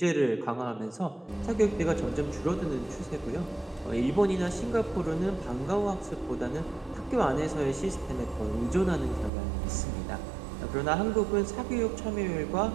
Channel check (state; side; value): drops out; left; at 9.3 s